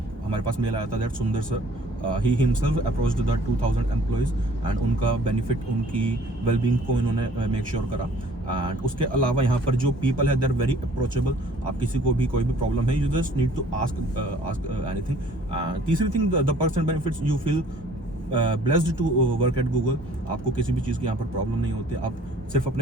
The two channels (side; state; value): both; normal; correlation 0.55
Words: हमारे पास मेल आया था दैट सुंदर sir he himself approached the 2000 employees and उनका बेनिफिट, उनकी वेलबींग को इन्होंने मेक श्योर करा। एंड उसके अलावा यहाँ पर जो पीपल है दे आर वेरी अप्रोचेबल। आप किसी को भी कोई भी प्रॉब्लम है, you just need to ask anything. तीसरी thing, the perks and benefits, you feel blessed to work at Google. आपको किसी भी चीज़ की यहाँ पर प्रॉब्लम नहीं होती, आप सिर्फ अपने